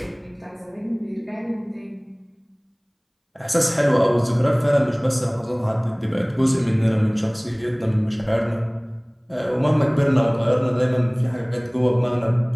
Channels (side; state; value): both; identical; correlation 1.00